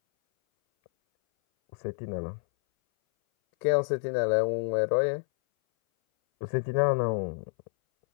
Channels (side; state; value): right; silent; 59 dB below the other